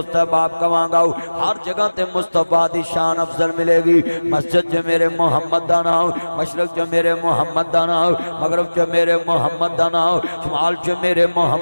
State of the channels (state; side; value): inverted; both; correlation -1.00